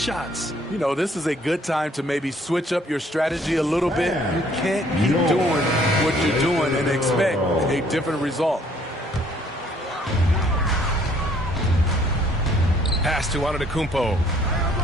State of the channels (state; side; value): normal; both; correlation 0.62